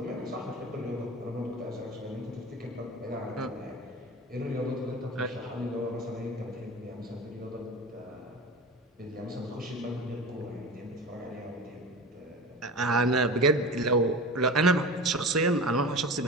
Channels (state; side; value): normal; both; correlation 0.32